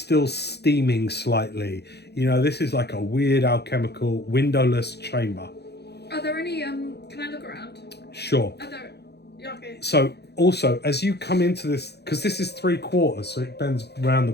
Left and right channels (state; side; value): late; right; 0.48 ms